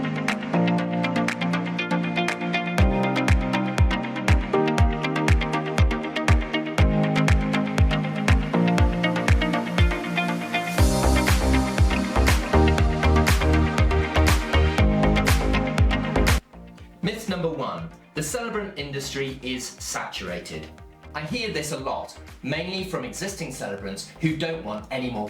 Myth number 1. The celebrant industry is saturated. I hear this a lot, mainly from existing celebrants who don't want any more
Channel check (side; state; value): both; identical; correlation 1.00